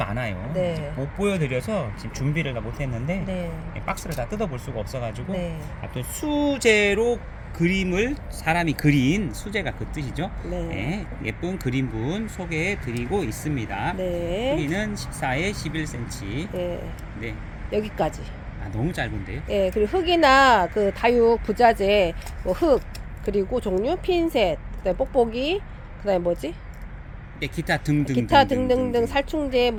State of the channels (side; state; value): both; identical; correlation 1.00